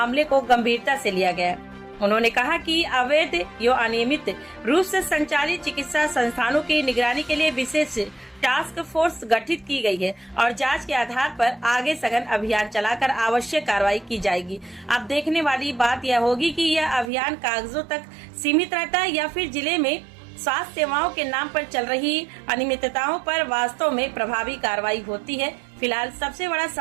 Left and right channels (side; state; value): left; drops out; at 17.1 s